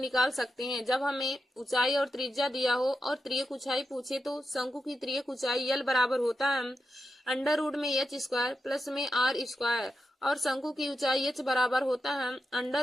सकते हैं। जब हमें ऊंचाई और त्रिज्या दिया हो और तिर्यक ऊंचाई पूछे तो शंकु की तिर्यक ऊंचाई यल बराबर होता है अंडर रूट में एच स्क्वायर प्लस में आर स्क्वायर। और शंकु की ऊंचाई h बराबर होता है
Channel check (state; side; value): normal; both; correlation 0.88